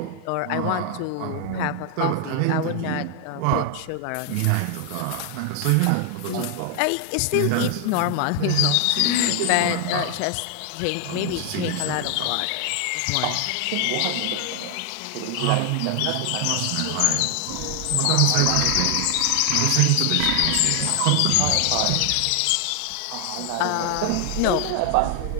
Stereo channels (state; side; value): different; both; correlation 0.00